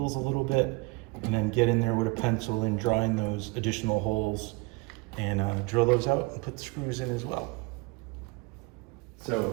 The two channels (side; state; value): left; quieter; 26.9 dB